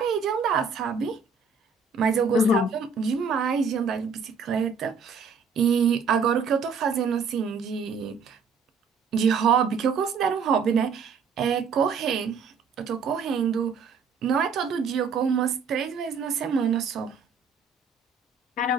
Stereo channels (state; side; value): quieter; left; 5.2 dB